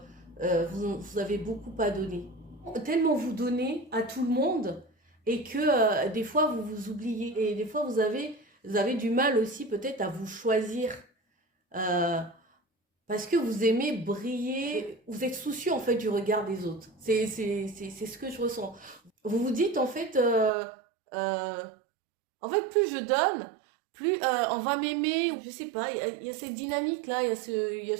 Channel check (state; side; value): drops out; left; at 20.5 s